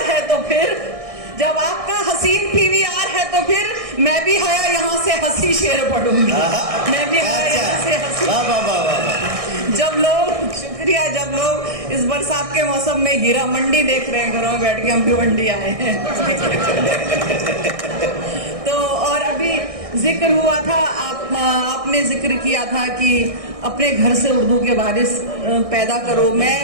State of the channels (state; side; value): late; left; 1.6 ms